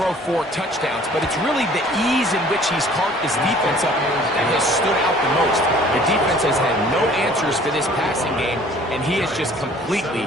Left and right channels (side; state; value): both; normal; correlation 0.53